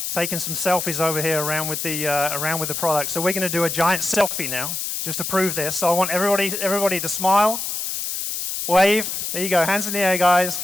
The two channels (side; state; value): left; noise; hiss, 3 dB below the sound